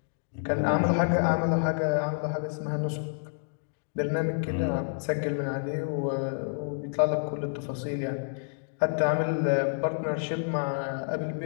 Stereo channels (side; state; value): right; silent; digital silence